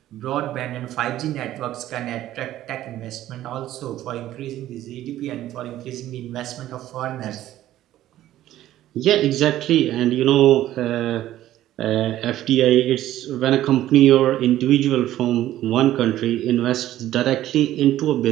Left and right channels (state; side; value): quieter; left; 13.6 dB